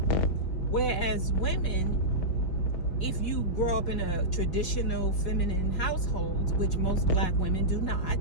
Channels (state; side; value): late; right; 5.5 ms